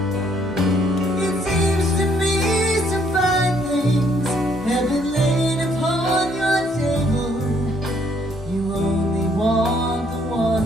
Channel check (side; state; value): both; normal; correlation 0.67